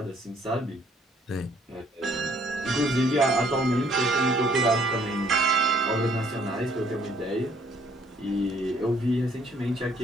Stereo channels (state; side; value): normal; both; correlation 0.63